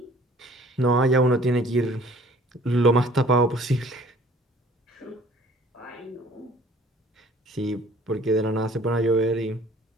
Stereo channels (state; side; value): normal; both; correlation 0.53